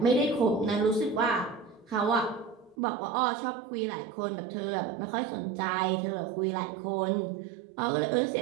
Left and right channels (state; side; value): drops out; left; at 2.8 s